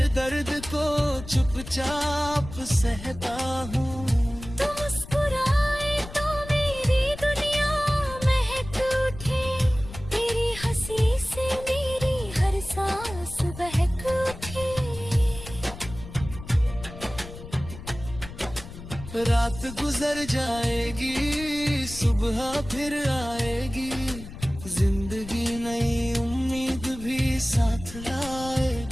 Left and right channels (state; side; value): noise; left; rumble, 13 dB below the sound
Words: दर्द को चुपचाप सहता हूँ। तू मुस्कुराए तो मेरी दुनिया महक उठे, तेरी हंसी से मेरी हर सांस बहक उठे। रात गुजर जाएगी, सुबह फिर आएगी, जिंदगी नई उम्मीद भी साथ